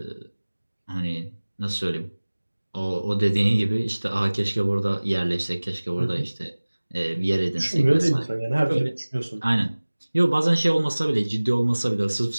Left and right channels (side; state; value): both; inverted; correlation -1.00